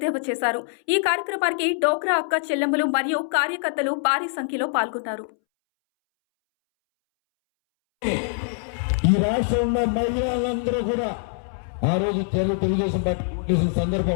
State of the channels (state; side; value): silent; right; 63 dB below the other